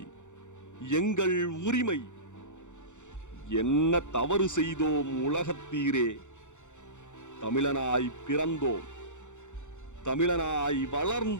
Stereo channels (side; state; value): right; late; 0.85 ms